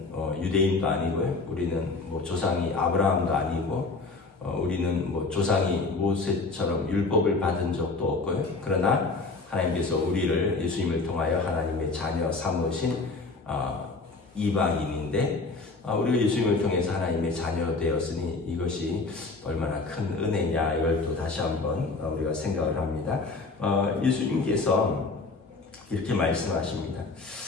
유대인도 아니고요. 우리는 뭐 조상이 아브라함도 아니고 우리는 뭐 조상이 모세처럼 율법을 받은 적도 없고요. 그러나 하나님께서 우리를 예수님을 통하여 하나님의 자녀 삼으신 이방인인데 우리가 예수님을 통해서 하나님의 자녀 되었으니 이것이 얼마나 큰 은혜냐 이걸 또 다시 한번 우리가 생각을 합니다. 예수님께서 이렇게 말씀하십니다.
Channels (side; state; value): right; quieter; 3.8 dB